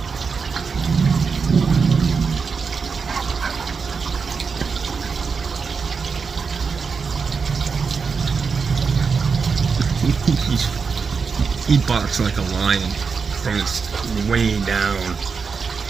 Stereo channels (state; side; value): quieter; left; 5.4 dB